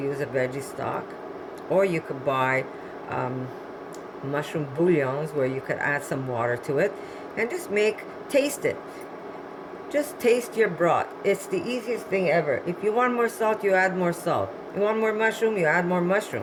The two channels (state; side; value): identical; both; correlation 1.00